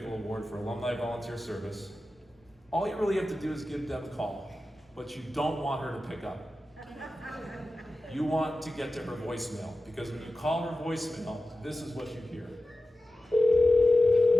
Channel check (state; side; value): normal; both; correlation 0.94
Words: Award for Alumni Volunteer Service, all you really have to do is give Deb a call, but you don't want her to pick up. You want to get to her voicemail, because when you call her voicemail, this is what you hear.